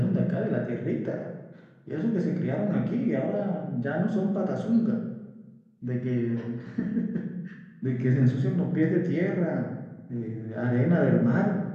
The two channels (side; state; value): both; identical; correlation 1.00